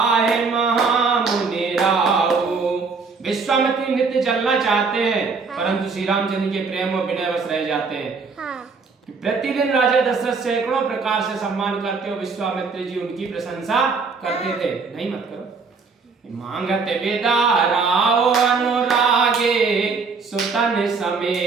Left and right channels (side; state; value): left; quieter; 4.7 dB